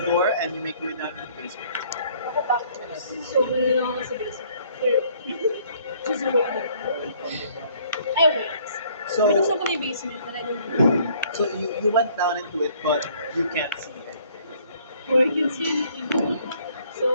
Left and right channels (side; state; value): both; inverted; correlation -0.60